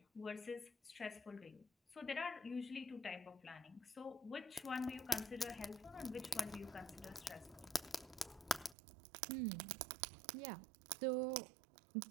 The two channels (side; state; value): left; drops out; at 8.8 s